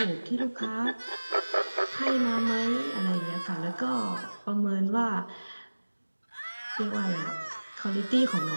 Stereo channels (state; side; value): inverted; both; correlation -1.00